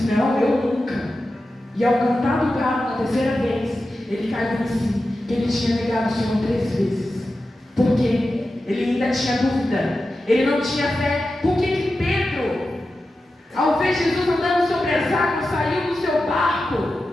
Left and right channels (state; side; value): normal; both; correlation 0.92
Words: não, eu nunca. E ao cantar do galo na 3ª vez, ele caiu em si, que ele tinha negado o Senhor 3 vezes. Por quê? Ele ainda tinha dúvida, ele não tinha fé. Por que Pedro, ao ver Jesus andando sobre as águas, saiu do seu barco